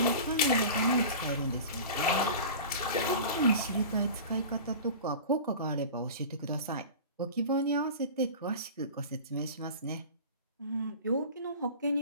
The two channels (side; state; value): both; inverted; correlation -0.35